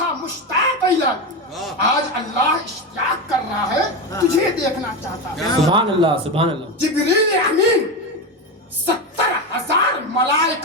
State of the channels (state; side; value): normal; both; correlation 0.16